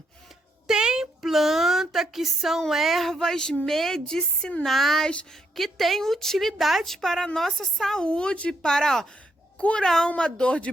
Tem planta que são ervas medicinais, que têm utilidade para a nossa saúde, para curar uma dor de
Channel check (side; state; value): both; normal; correlation 0.77